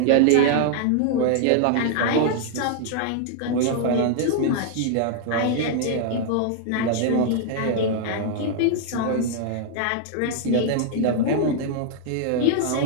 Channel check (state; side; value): different; both; correlation 0.00